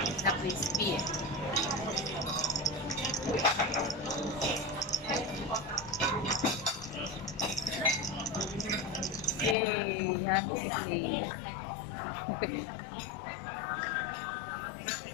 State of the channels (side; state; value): right; drops out; at 9.6 s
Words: Na crispy eh. Yay! Happy day.